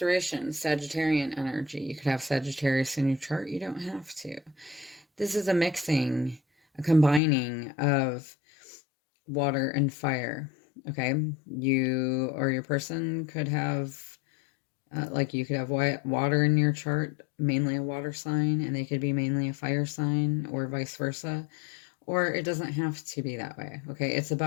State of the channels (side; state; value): right; drops out; at 7.2 s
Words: Sagittarian energy. You could have Sagittarius in your chart. You don't have to. This is a mixing, a combining of water and fire. Okay, you or your person could have Like you could have water in your chart, mainly a water sign, and they could be mainly a fire sign, or vice versa. Or it doesn't have to be that way, okay? It's